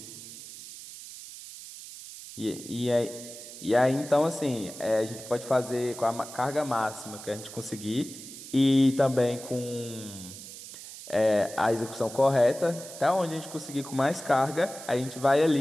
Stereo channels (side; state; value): right; noise; hiss, 13 dB below the sound